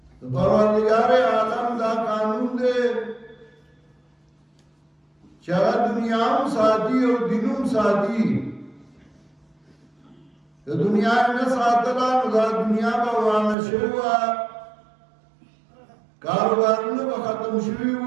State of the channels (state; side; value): drops out; left; at 13.6 s